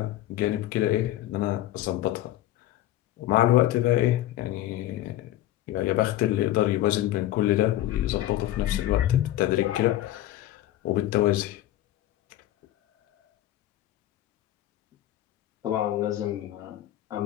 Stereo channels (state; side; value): quieter; right; 14.0 dB